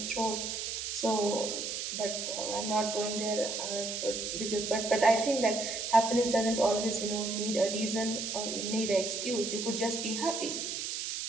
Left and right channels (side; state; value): right; noise; hiss, 4 dB below the sound